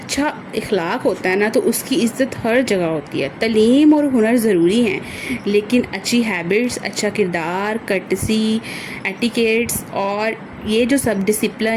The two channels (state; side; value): identical; both; correlation 1.00